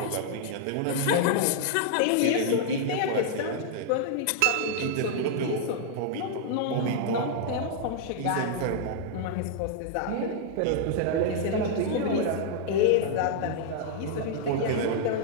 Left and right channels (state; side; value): different; both; correlation -0.01